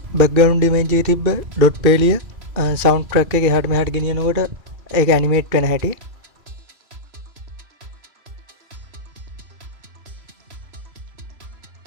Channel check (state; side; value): late; left; 2.5 ms